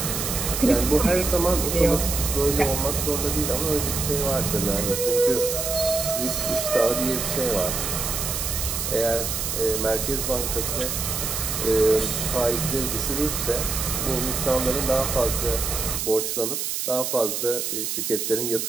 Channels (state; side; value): noise; right; hiss, 2 dB below the sound